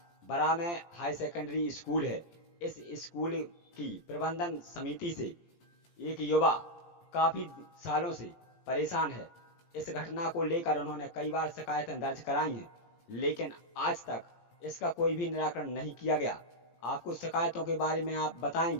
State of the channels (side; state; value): right; late; 17 ms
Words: बरा में हाई सेकेंडरी स्कूल है। इस स्कूल की प्रबंधन समिति से एक युवा काफी सालों से परेशान है। इस घटना को लेकर उन्होंने कई बार शिकायतें दर्ज कराई हैं, लेकिन आज तक इसका कोई भी निराकरण नहीं किया गया। आपको शिकायतों के बारे में आप